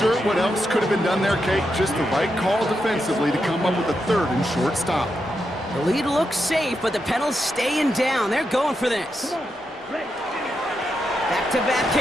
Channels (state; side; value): normal; both; correlation 0.85